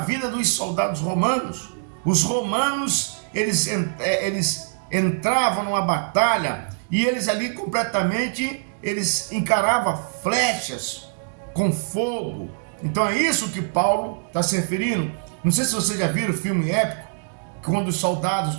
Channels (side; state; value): left; silent; digital silence